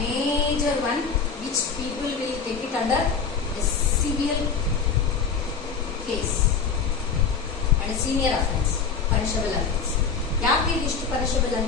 one which people will take it under a severe case and a senior offense, punishable offense. ಯಾಕೆ ಇಷ್ಟು punishable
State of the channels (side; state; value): right; quieter; 5.7 dB